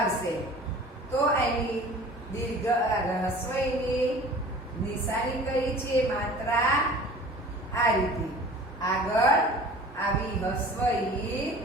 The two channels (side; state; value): both; normal; correlation 0.44